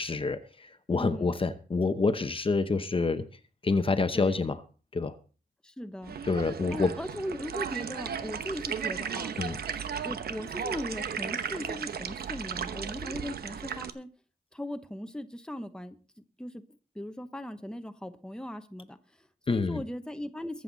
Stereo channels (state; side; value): normal; both; correlation 0.67